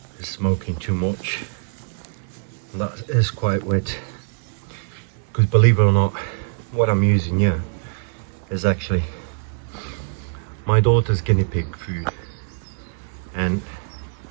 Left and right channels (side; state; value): left; silent; 63 dB below the other